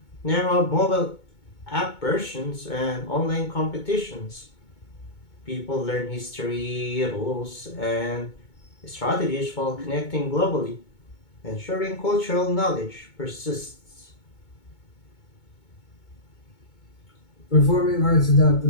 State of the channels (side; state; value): right; late; 2.2 ms